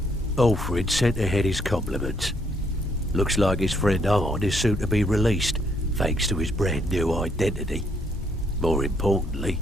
Olfrid sent ahead his compliments. Looks like his friend Arn is soon to be released, thanks to his brand new identity. More importantly,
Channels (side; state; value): both; normal; correlation 0.71